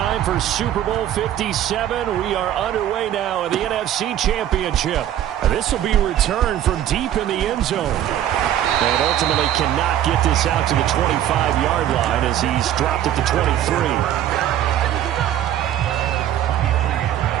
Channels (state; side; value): quieter; left; 11.5 dB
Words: for Super Bowl 57, we are underway now in the NFC Championship. This will be returned from deep in the end zone. And ultimately cannot get this out to the 25-yard line as he's dropped at the 23.